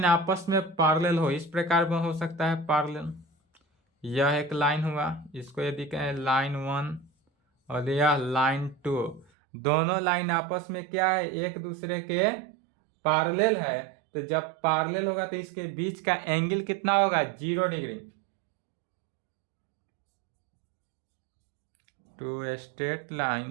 आपस में पैरेलल हो, इस प्रकार में हो सकता है पैरेलल, यह एक लाइन हुआ, इसको यदि कहें लाइन 1 और यह लाइन 2, दोनों लाइन आपस में क्या है, एक दूसरे के पैरेलल है। तो जब पैरेलल होगा तो इसके बीच का एंगल कितना होगा, 0 degree. Two straight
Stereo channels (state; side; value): drops out; left; at 9.2 s